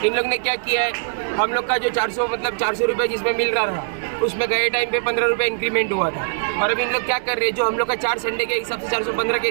इन लोग ने क्या किया है, हम लोग का जो 400 रुपये जिसमें मिल रहा था, उसमें गए टाइम पे 15 रुपये इंक्रीमेंट हुआ था। और अब इन लोग क्या कर रहे हैं, जो हम लोग का 4 संडे के हिसाब से 415 के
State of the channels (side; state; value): left; silent; digital silence